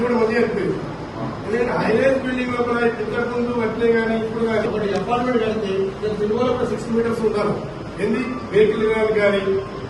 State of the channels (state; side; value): identical; both; correlation 1.00